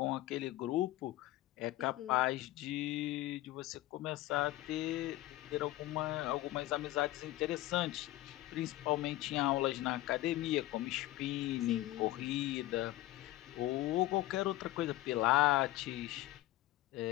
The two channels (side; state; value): right; quieter; 16.3 dB